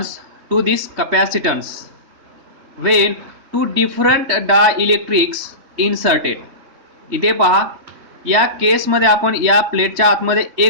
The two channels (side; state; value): left; late; 3.2 ms